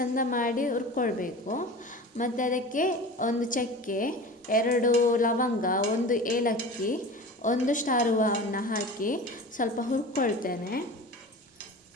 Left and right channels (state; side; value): normal; both; correlation 0.35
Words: ಮಾಡಿ ಹುರ್ಕೊಳ್ಬೇಕು. ಮತ್ತು ಅದಕ್ಕೆ 1 ಚಕ್ಕೆ, 2 ಲವಂಗ, 1 ಏಲಕ್ಕಿ, 1 ಸ್ಟಾರ್ ಹೂವನ್ನು ಹಾಕಿ ಸ್ವಲ್ಪ ಹುರ್ಕೊಳ್ತೇನೆ.